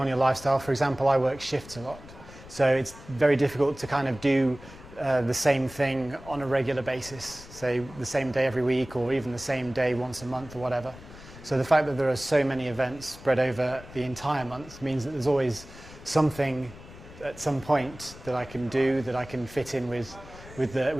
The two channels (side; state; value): left; noise; rumble, 18 dB below the sound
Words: your lifestyle, for example, I work shifts a lot. So it's very difficult to kind of do the same thing on a regular basis, say the same day every week or even the same day once a month or whatever. So the fact that there are so many events spread over the entire month means that there's always something at some point that I can do, that I can fit in with